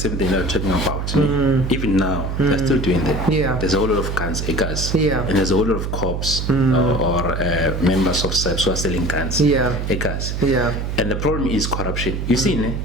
thing they're talking about, even now they're still doing that. Yeah. There's a whole lot of guns, Yeah. and there's a whole lot of cops or members of SAPS who are selling guns, Yeah. Yeah. And the problem is corruption. You see,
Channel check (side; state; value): right; noise; hum, 3 dB below the sound